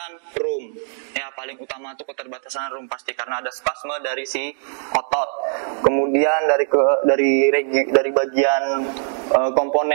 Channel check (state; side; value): silent; left; digital silence